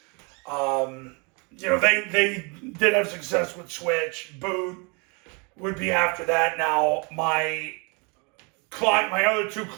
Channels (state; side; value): quieter; left; 32.1 dB